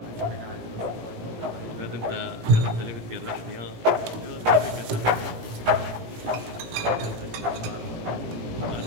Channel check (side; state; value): left; late; 17 ms